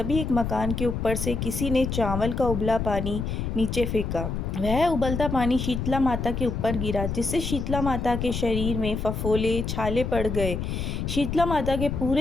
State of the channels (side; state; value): left; noise; rumble, 3 dB below the sound